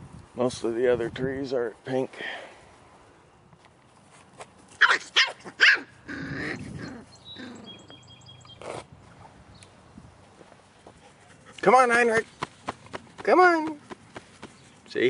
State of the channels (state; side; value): identical; both; correlation 1.00